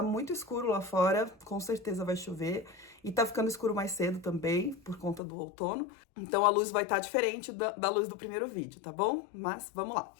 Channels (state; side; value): drops out; right; at 5.2 s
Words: muito escuro lá fora, com certeza vai chover. E tá ficando escuro mais cedo também, por conta do outono. Então a luz vai estar diferente da luz do primeiro vídeo, tá bom? Mas vamos lá.